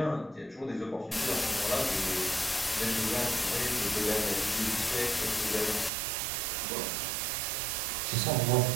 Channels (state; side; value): drops out; left; at 5.9 s